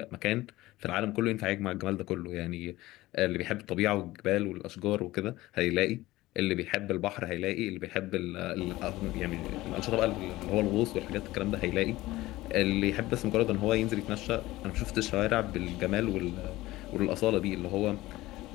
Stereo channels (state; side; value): quieter; right; 17.9 dB